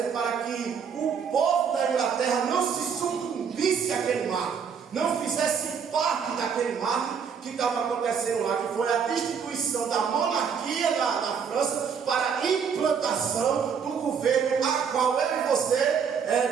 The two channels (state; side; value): quieter; left; 6.7 dB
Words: para que o povo da Inglaterra não se sucumbisse àquele marco, não fizesse parte daquele marco que estava acontecendo lá, que foi a destituição da monarquia na França para a implantação do governo a qual eu e você